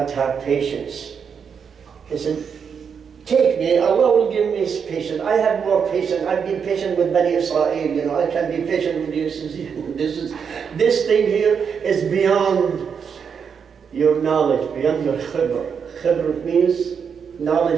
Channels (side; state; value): left; quieter; 6.7 dB